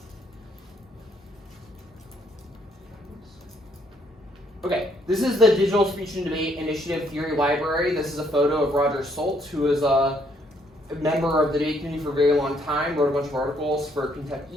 Okay, this is the Digital Speech and Debate Initiative Theory Library. This is a photo of Roger Soltz, who is a member of the debate community for a very long time, wrote a bunch of articles for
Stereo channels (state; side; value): normal; both; correlation 0.69